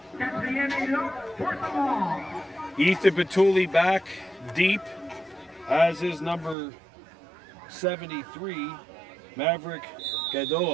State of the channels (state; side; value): drops out; left; at 6.6 s